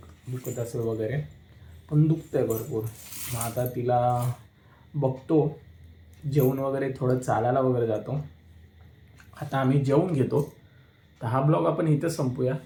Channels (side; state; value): both; identical; correlation 1.00